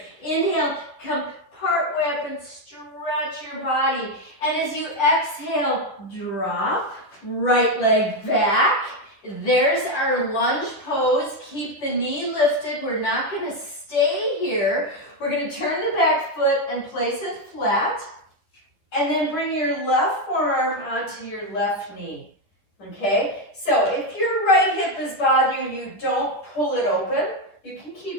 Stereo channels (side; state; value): right; late; 10 ms